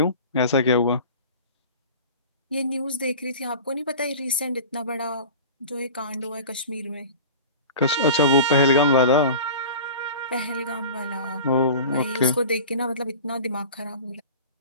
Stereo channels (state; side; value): inverted; both; correlation -0.38